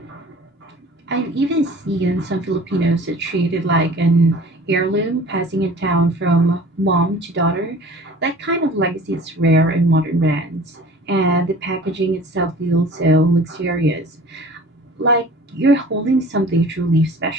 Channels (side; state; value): both; normal; correlation 0.45